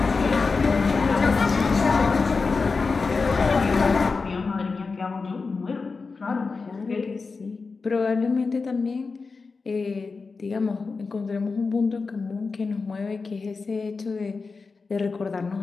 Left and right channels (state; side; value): quieter; right; 4.4 dB